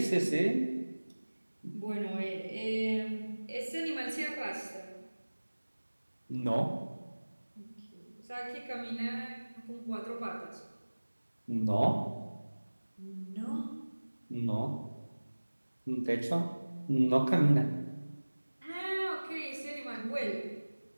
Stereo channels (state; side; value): inverted; both; correlation -1.00